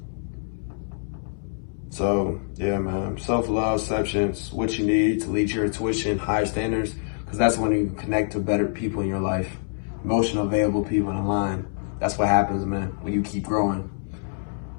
So, yeah, man. Self-love, acceptance, what you need to lead your intuition, higher standards, because that's when you connect to better people in your life. Emotional, available people in a line. That's what happens, man, when you keep growing.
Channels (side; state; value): right; silent; 61 dB below the other